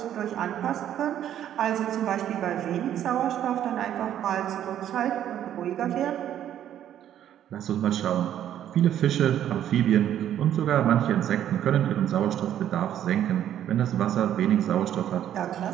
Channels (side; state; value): left; quieter; 10.8 dB